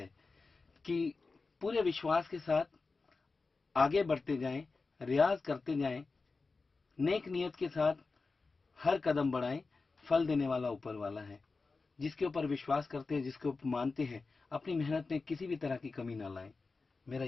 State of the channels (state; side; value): quieter; right; 4.1 dB